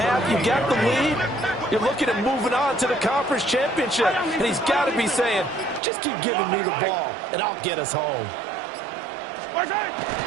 you got the lead, you're looking at moving on to the conference championship, and he's got to be saying, just keep giving me the ball, and I'll get us home. 5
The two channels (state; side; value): drops out; left; at 5.8 s